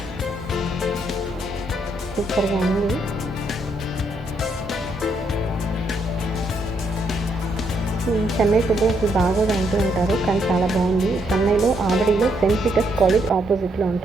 సూపర్గా ఉంది. చెన్నై ఫుడ్ అసలు బాగోదు అంటూ ఉంటారు, కానీ చాలా బాగుంది. చెన్నైలో ఆవడిలో సెయింట్ పీటర్స్ కాలేజ్ ఆపోజిట్లో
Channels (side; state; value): both; normal; correlation 0.75